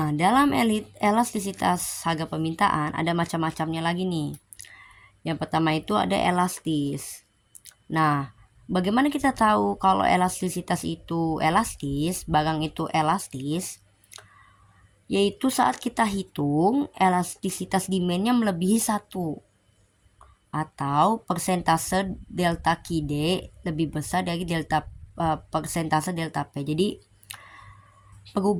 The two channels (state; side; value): identical; both; correlation 1.00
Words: dalam elastisitas harga permintaan ada macam-macamnya lagi nih. Yang pertama itu ada elastis. Nah, bagaimana kita tahu kalau elastisitas itu elastis, barang itu elastis? Yaitu saat kita hitung elastisitas demandnya melebihi 1 atau persentase delta QD lebih besar dari persentase delta P. Jadi